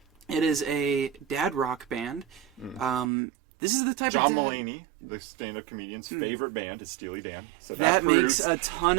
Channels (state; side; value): drops out; left; at 3.1 s